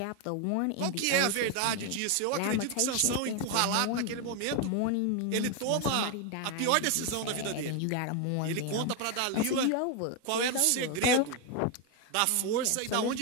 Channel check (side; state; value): both; different; correlation 0.01